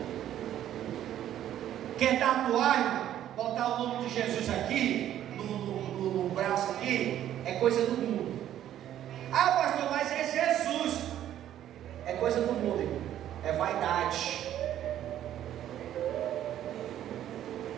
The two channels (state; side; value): quieter; left; 11.6 dB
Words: Quer tatuar, botar o nome de Jesus aqui, no braço aqui, é coisa do mundo. Ah, pastor, mas é Jesus. É coisa do mundo, irmão. É vaidade.